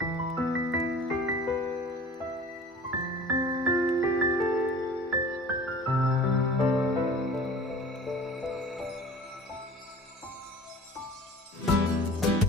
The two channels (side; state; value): both; normal; correlation 0.43